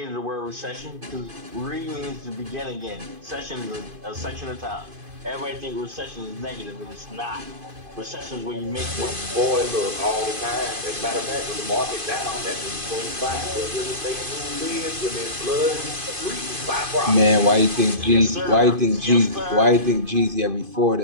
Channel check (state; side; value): late; left; 2.5 ms